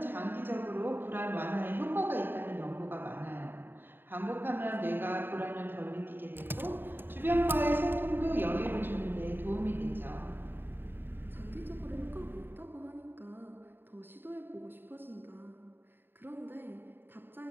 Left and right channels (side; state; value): left; late; 0.097 ms